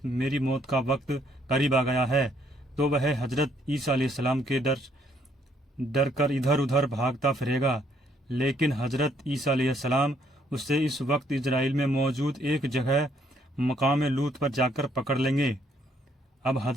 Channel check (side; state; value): both; normal; correlation 0.69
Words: میری موت کا وقت قریب آ گیا ہے، تو وہ حضرت عیسیٰ علیہ السلام کے ڈر کر ادھر ادھر بھاگتا پھرے گا، لیکن حضرت عیسیٰ علیہ السلام اسے اس وقت اسرائیل میں موجود ایک جگہ مقام لوط پر جا کر پکڑ لیں گے۔ اب